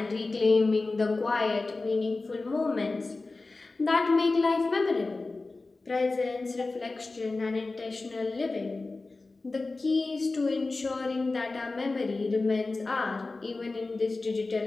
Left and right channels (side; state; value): right; quieter; 3.5 dB